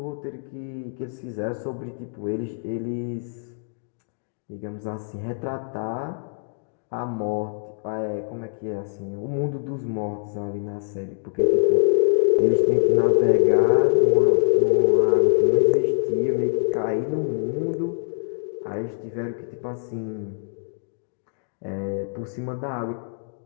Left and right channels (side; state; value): right; silent; digital silence